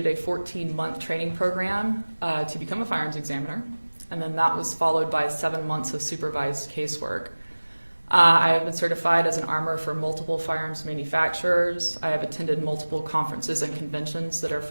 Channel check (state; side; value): inverted; both; correlation -1.00